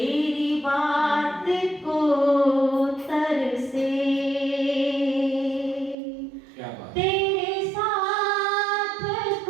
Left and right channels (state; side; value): drops out; left; at 6.0 s